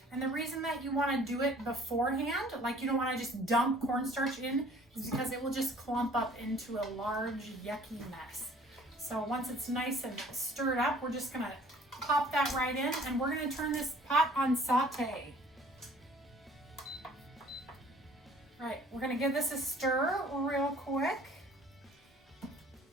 And the reason that you want to do it beforehand, like you don't want to just dump cornstarch in, is because it will just clump up into a large yucky mess. So once it's nice and stirred up, we're just gonna pop that right in, and we're gonna turn this pot on saute. Right, we're gonna give this a stir real quick.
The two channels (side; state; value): both; normal; correlation 0.53